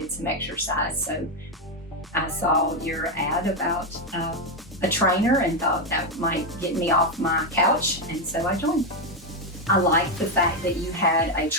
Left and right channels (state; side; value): normal; both; correlation 0.05